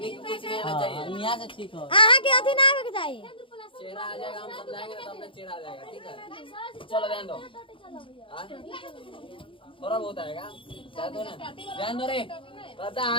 नहीं आना चाहिए। यहाँ से ठीक हो चेहरा आ जाएगा, हम समझाएंगे तो अपना चेहरा आ जाएगा। ठीक है चलो ध्यान दो, थोड़ा बहुत आएगा ध्यान दो रे, पता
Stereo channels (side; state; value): right; late; 0.25 ms